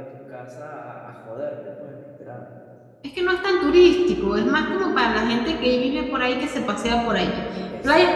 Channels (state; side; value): identical; both; correlation 1.00